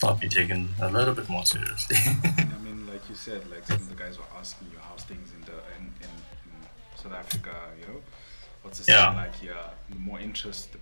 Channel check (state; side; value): inverted; both; correlation -1.00